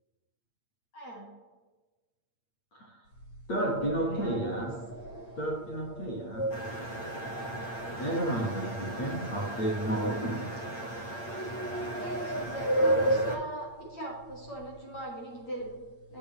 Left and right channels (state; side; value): late; right; 8.7 ms